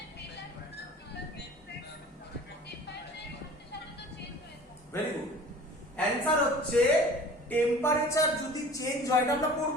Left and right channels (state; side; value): normal; both; correlation 0.43